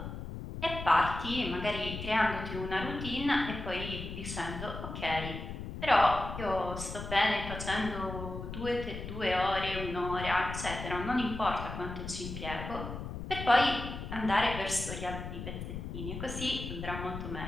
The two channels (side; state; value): left; noise; rumble, 7 dB below the sound